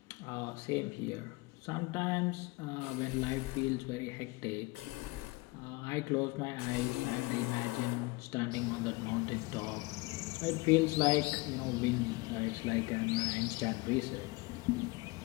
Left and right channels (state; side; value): quieter; right; 24.0 dB